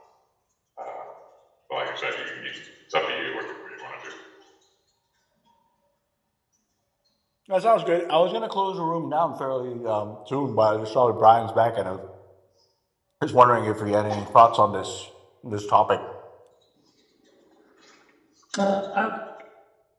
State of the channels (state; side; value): identical; both; correlation 1.00